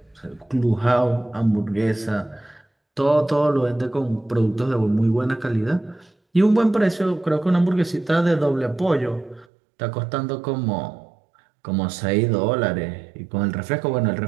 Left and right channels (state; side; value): drops out; left; at 9.5 s